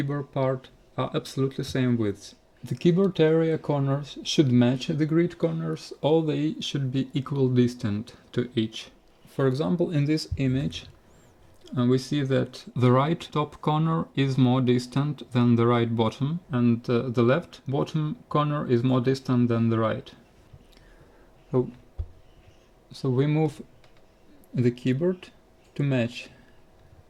part are absolutely same width. The keyboard area corners should match the grid corners, or they should be equal distant to each. For example, in this image, we see that the right top corner is more distant than the right bottom, and the left bottom corner is more distant than the right. So we move the keyboard to match,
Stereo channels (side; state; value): both; identical; correlation 1.00